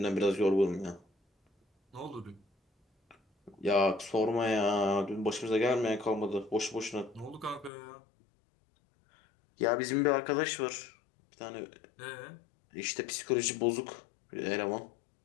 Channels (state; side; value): drops out; right; at 7.7 s